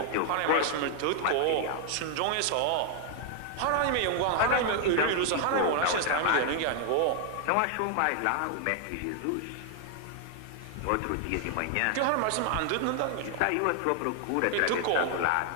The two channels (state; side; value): different; both; correlation 0.00